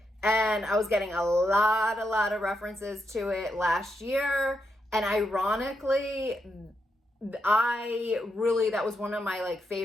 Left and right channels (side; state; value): both; normal; correlation 0.83